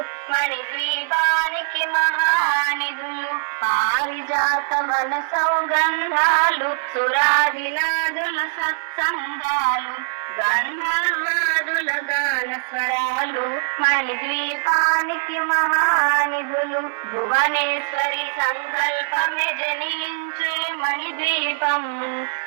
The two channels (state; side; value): silent; left; digital silence